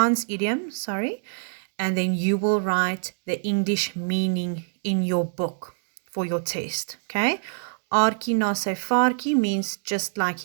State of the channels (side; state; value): left; silent; 61 dB below the other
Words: idiom, and then you will write the English meaning in your book for your test, okay? Aartjie na sy vaartjie means just like